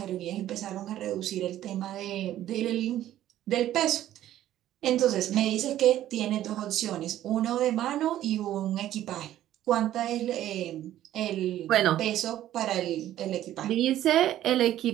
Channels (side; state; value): left; quieter; 12.8 dB